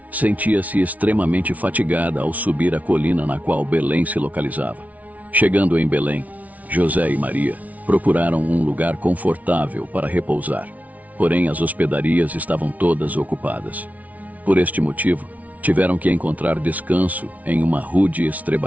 sentia-se extremamente fatigada ao subir a colina na qual Belém se localizava. Chegando em Belém, José e Maria procuraram um lugar confortável para repousar, porém as hospedarias estavam todas ocupadas. Por este motivo, tiveram que encontrar descanso em uma rude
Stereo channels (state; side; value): late; left; 0.071 ms